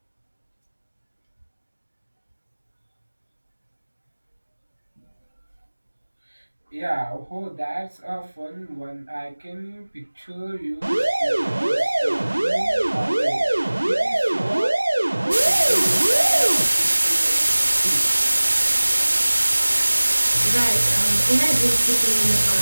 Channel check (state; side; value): inverted; both; correlation -1.00